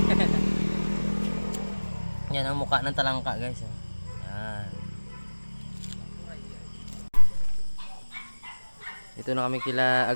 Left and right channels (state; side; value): inverted; both; correlation -1.00